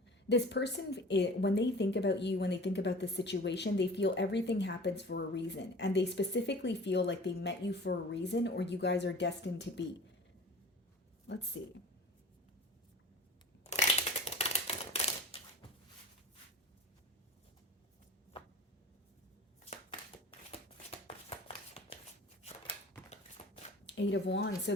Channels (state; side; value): normal; both; correlation 0.41